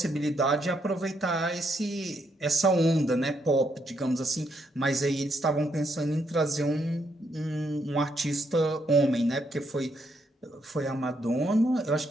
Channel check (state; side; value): normal; both; correlation 0.76